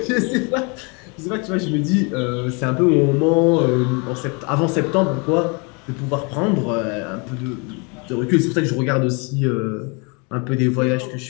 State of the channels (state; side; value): quieter; right; 32.2 dB